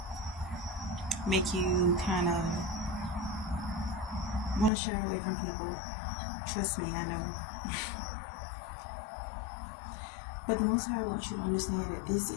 make you kind of want to shy away from people. Trust me, I know. But the Most High wants you to understand that this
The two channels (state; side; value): drops out; right; at 4.7 s